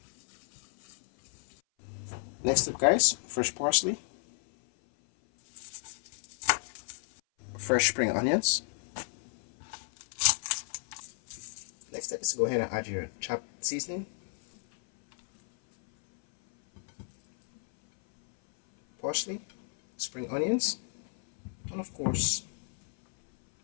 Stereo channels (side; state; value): right; silent; 57 dB below the other